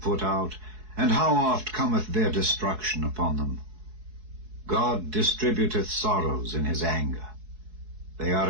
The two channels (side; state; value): left; late; 4.7 ms